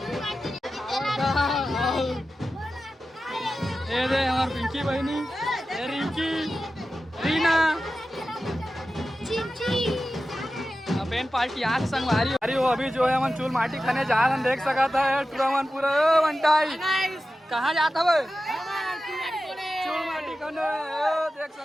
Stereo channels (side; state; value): both; normal; correlation 0.93